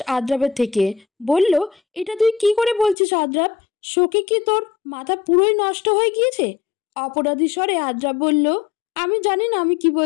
আদ্রাবের থেকে। বলল, এটা তুই কি করে বলছিস আদ্রাব? শোকে কি তোর মাথা পুরোই নষ্ট হয়ে গিয়েছে? অপরাধী স্বরে আদ্রাব বলল, আমি জানি না আমি কি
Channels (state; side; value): drops out; right; at 3.0 s